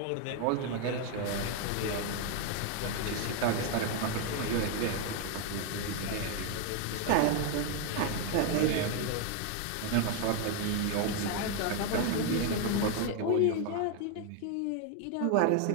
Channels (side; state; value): both; different; correlation 0.01